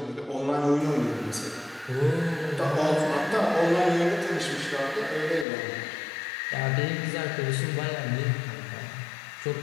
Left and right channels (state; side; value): drops out; right; at 5.5 s